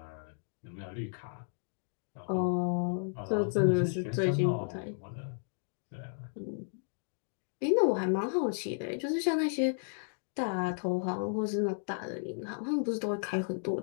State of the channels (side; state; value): right; silent; digital silence